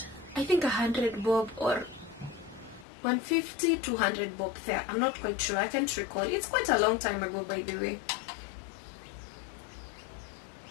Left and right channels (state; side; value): drops out; right; at 2.9 s